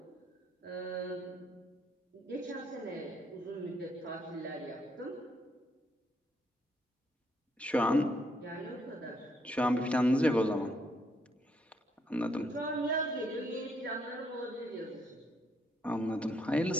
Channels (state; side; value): normal; both; correlation 0.73